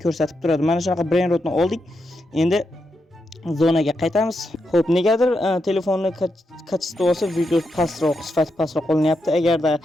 ko'rsatib turadi. Mana shunaqa brainrotni oldik. Endi zonaga qaytamiz. Xo'p, negadir telefonni kachestvasi video pastroq, sifati pastroq qolinyapti. Agarda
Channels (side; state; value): both; normal; correlation 0.84